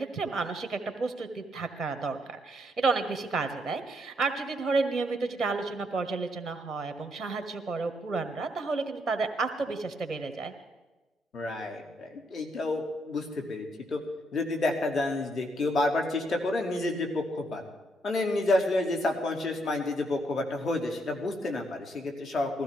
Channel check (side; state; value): both; normal; correlation 0.75